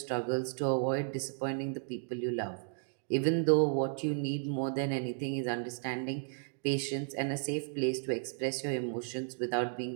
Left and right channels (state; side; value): silent; left; digital silence